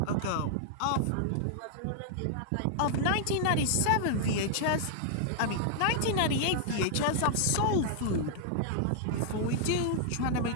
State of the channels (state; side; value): different; both; correlation -0.01